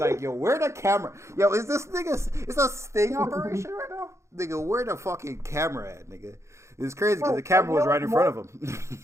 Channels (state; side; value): late; left; 0.14 ms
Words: yo, where the camera? Yo, is this nigga? Is that a sting operation right now? Nigga, where the fucking camera at, nigga? It's crazy because the camera was right in front of him.